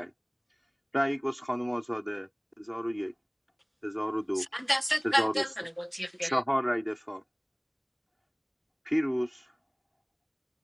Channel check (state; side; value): identical; both; correlation 1.00